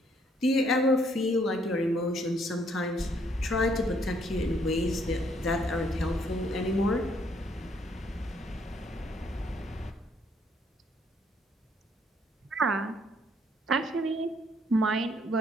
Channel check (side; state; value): both; normal; correlation 0.68